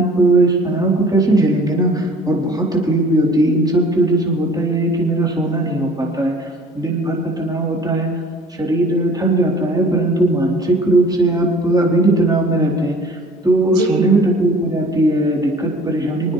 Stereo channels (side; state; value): both; normal; correlation 0.49